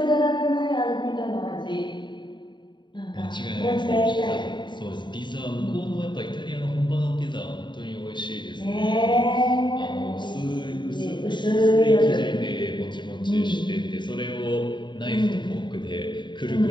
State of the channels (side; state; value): right; late; 0.22 ms